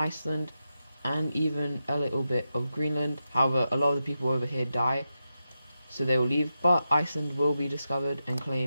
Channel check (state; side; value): inverted; both; correlation -0.89